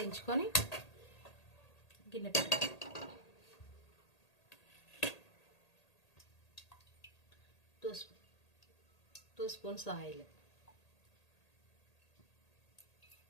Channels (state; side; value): late; right; 1.8 ms